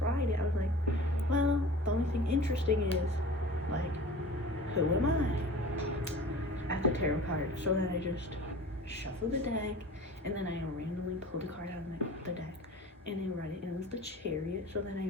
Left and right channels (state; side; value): normal; both; correlation 0.40